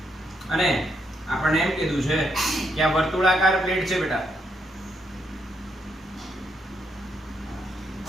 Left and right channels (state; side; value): normal; both; correlation 0.77